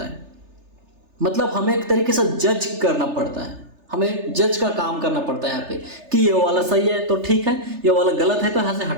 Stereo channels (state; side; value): late; left; 3.3 ms